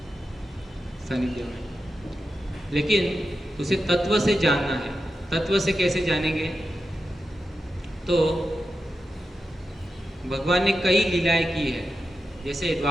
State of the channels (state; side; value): normal; both; correlation 0.90